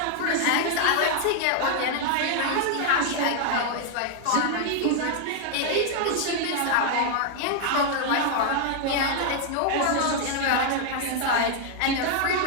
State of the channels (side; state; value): both; different; correlation 0.00